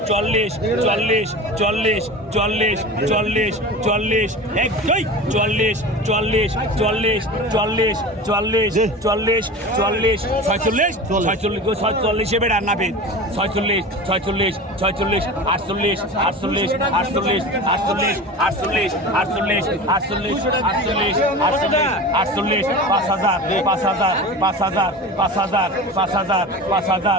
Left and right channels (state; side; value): normal; both; correlation 0.32